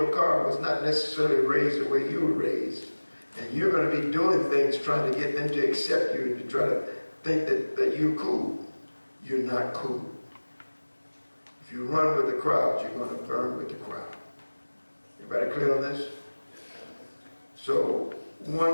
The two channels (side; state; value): both; inverted; correlation -1.00